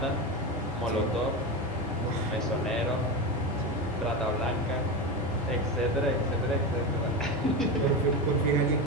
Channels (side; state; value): both; normal; correlation 0.19